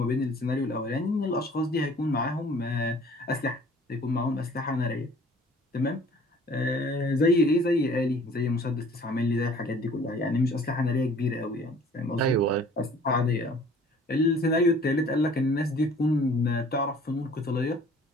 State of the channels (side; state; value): both; normal; correlation 0.52